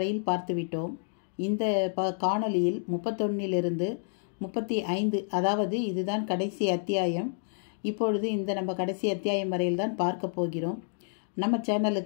பார்த்துவிட்டோம். இந்த காணொளியில் 31 35, அதாவது இதுதான் கடைசி அத்தியாயம். இப்பொழுது இந்த நம்ம கடைசி அத்தியாயம் வரையில் தான் பார்க்க போகிறோம். நம்ம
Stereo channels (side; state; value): right; silent; digital silence